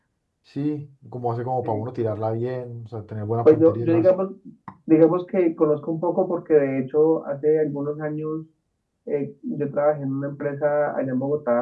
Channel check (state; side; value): identical; both; correlation 1.00